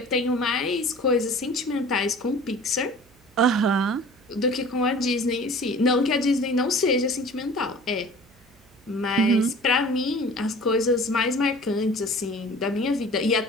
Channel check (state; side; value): noise; right; hum, 29 dB below the sound